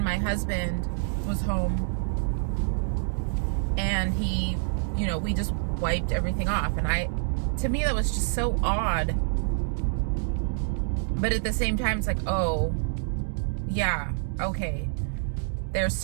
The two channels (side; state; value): left; silent; digital silence